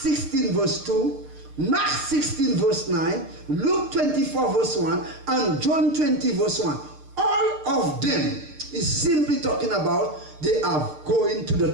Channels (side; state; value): left; late; 6.6 ms